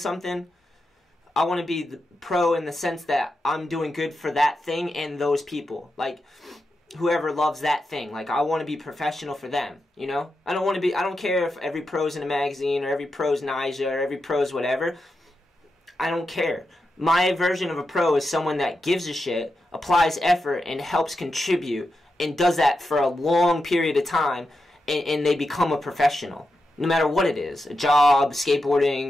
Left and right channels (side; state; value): both; normal; correlation 0.88